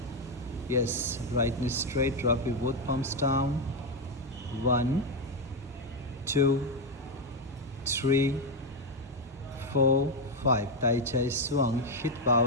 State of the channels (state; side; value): normal; both; correlation 0.06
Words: Yes, right knee straight, drop your both palms down. 1, 2, 3, 4, 5. Tai chai swung, hit